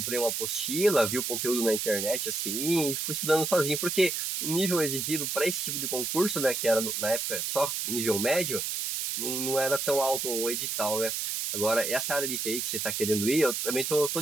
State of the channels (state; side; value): noise; right; hiss, 2 dB below the sound